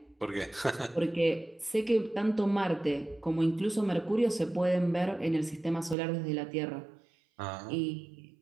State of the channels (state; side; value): drops out; left; at 6.0 s